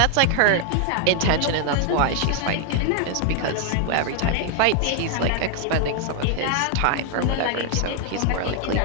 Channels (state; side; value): different; both; correlation 0.00